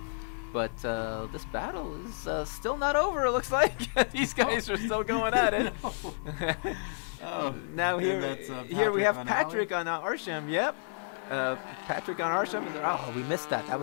But this battle is still not over, it looks like. These guys are still going at it. Now here we have Patrick on Arsham. Yep. Patrick on Arsham. Oh, we missed that. That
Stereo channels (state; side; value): silent; right; 57 dB below the other